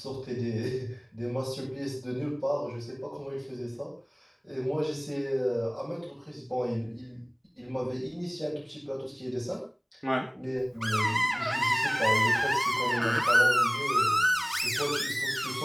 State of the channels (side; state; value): both; identical; correlation 1.00